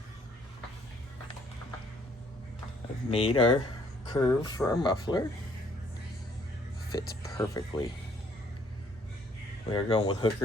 I've made our curve for our muffler. Fits perfectly. We are going with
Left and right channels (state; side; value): normal; both; correlation 0.64